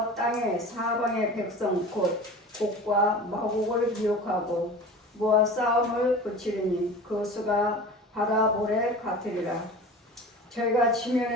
땅의 사방의 백성 곧 곡과 마곡을 미혹하고 모아 싸움을 붙이리니 그 수가 바다 모래 같으리라. 저희가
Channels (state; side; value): normal; both; correlation 0.36